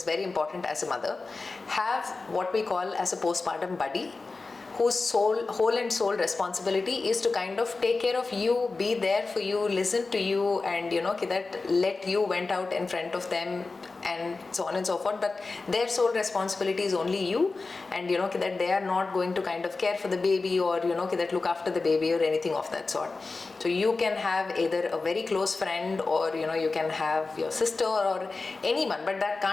very important as a mother, have what we call as a postpartum buddy, whose whole and soul responsibility is to kind of take care of you, be there for you, listen to you, and that let you vent out in front of them, and so on and so forth. But their sole responsibility is only you, and that they are not going to kind of care for the baby, or that look after the baby or anything of that sort. So you can have either a very close friend, or you can have your sister or anyone, but that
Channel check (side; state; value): right; quieter; 3.8 dB